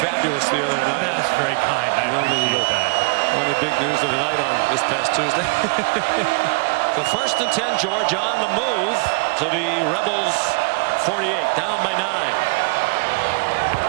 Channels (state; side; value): quieter; left; 31.2 dB